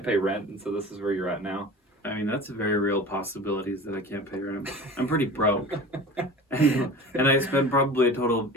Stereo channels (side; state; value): both; normal; correlation 0.37